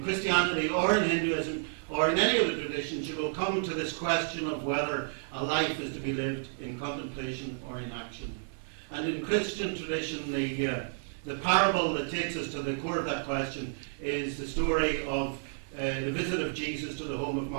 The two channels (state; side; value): silent; left; 57 dB below the other